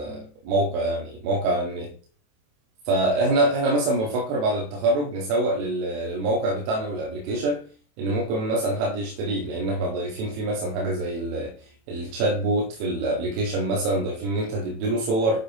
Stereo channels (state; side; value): late; left; 27 ms